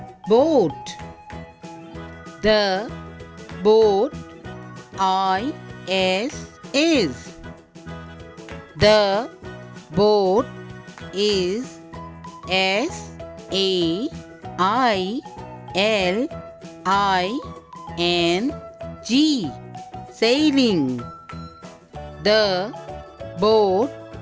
boat. The boat is the boat is S-A-I-L-I-N-G sailing. The boat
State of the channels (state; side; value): identical; both; correlation 1.00